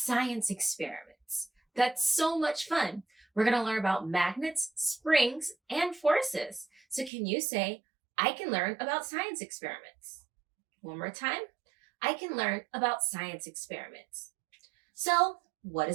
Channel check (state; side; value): drops out; left; at 7.1 s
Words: experiments. That's so much fun. We're going to learn about magnets, springs, and forces. So can you say, I can learn about science experiments? One more time. I can learn about science experiments. So what